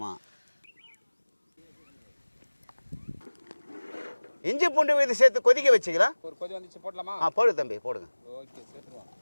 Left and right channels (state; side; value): inverted; both; correlation -1.00